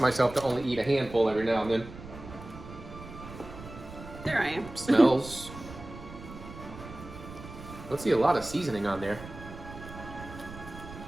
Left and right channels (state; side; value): noise; right; rumble, 14 dB below the sound